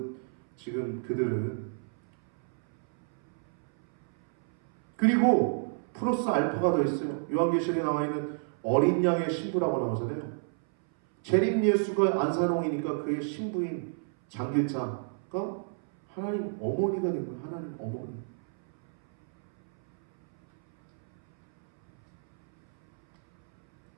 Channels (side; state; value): left; silent; 58 dB below the other